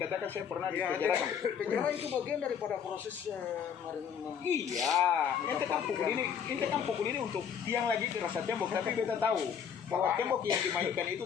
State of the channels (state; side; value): quieter; right; 7.7 dB